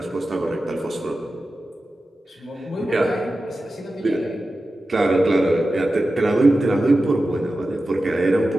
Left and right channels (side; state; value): both; normal; correlation 0.93